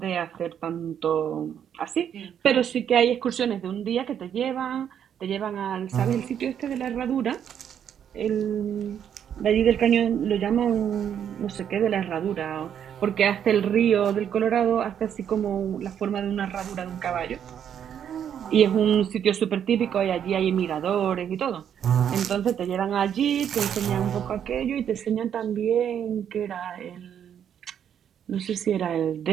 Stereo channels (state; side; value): quieter; left; 8.9 dB